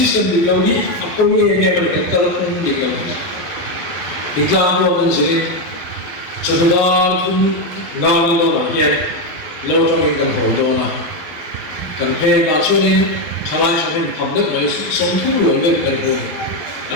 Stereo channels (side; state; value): right; late; 12 ms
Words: di lo ni a ko ni ne ba ke ta kun di lo Iklan lo kan sini, sebenarnya pun nang lo lah ya, lo trong kan hậu na, kan pe na cho nên chalai cho nên thầm đức ấy sống thu lo lên kan hậu,